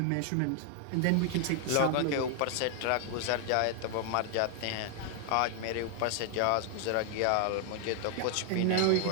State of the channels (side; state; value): both; different; correlation 0.00